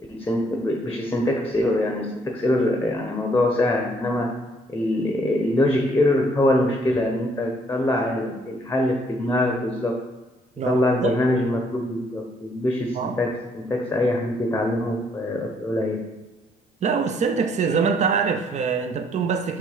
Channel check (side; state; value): both; normal; correlation 0.67